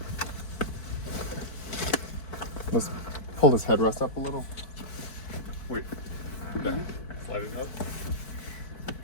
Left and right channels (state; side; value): late; right; 4.6 ms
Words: let's pull this headrest up a little. Wait. There. Slide it up.